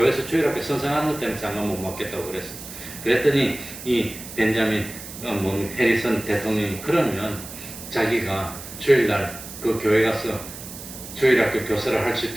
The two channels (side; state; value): right; noise; hiss, 12 dB below the sound